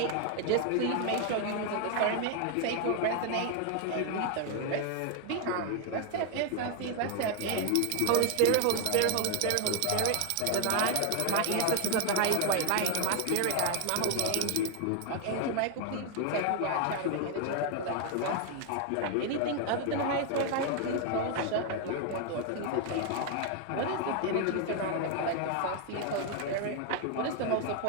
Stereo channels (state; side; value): different; both; correlation 0.00